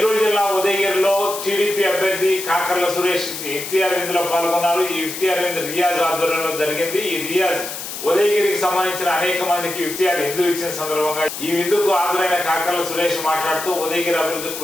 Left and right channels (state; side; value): noise; left; hiss, 8 dB below the sound